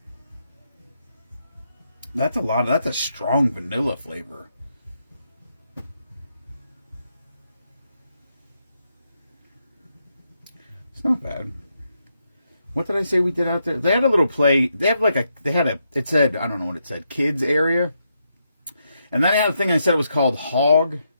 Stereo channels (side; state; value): both; inverted; correlation -0.81